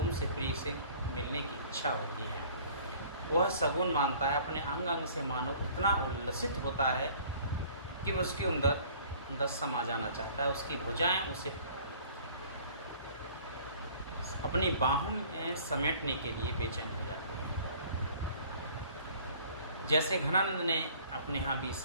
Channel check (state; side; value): inverted; both; correlation -0.52